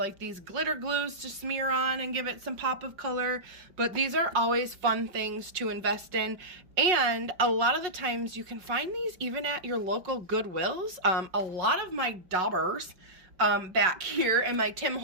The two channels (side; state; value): left; late; 5.5 ms